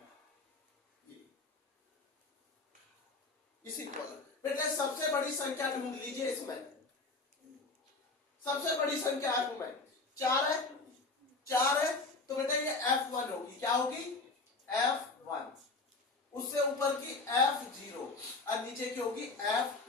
इसी कॉलम बेटे। सबसे बड़ी संख्या ढूंढ लीजिए इसमें। सबसे बड़ी संख्या F में 4 है, 4 है तो बेटा ये F1 होगी। क्या होगी? F1। उससे ऊपर की F0 और नीचे की होगी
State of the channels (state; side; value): quieter; right; 3.6 dB